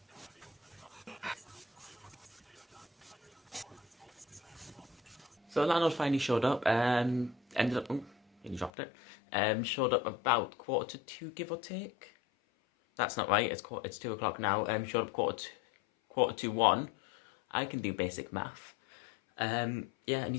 So landlord finally showed up. Ended up, he dropped it. Showed up about 1:45, give or take. That's not right. It's 2 o'clock now. Showed up quarter to 1. I can do basic math. Yeah, and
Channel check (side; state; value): right; drops out; at 8.7 s